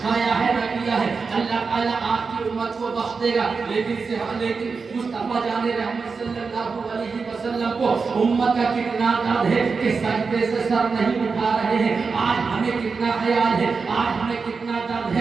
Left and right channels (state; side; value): quieter; left; 4.9 dB